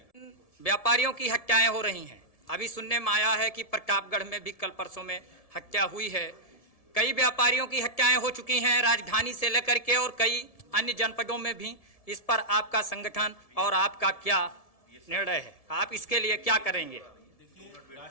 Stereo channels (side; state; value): right; late; 1.7 ms